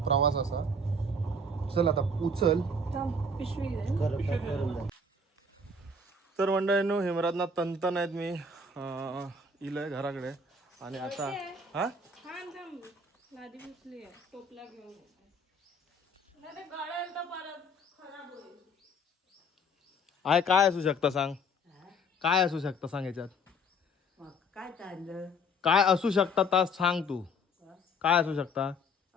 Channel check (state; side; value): normal; both; correlation 0.54